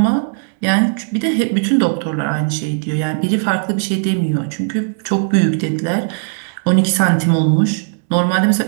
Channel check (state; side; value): silent; left; 65 dB below the other